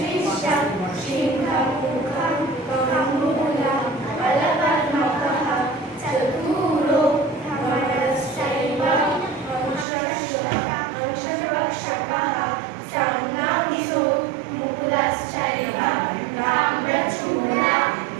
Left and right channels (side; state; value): left; drops out; at 9.9 s